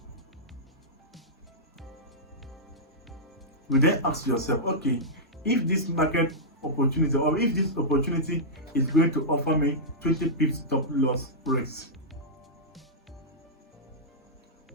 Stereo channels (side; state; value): both; normal; correlation -0.11